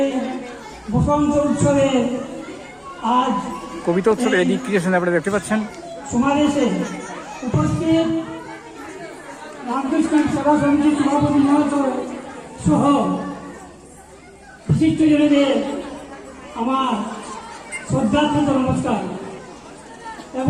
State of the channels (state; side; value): identical; both; correlation 1.00